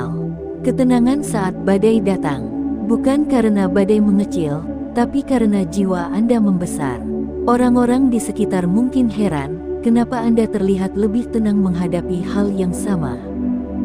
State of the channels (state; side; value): identical; both; correlation 1.00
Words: Ketenangan saat badai datang, bukan karena badai mengecil, tapi karena jiwa Anda membesar. Orang-orang di sekitar mungkin heran, kenapa Anda terlihat lebih tenang menghadapi hal yang sama.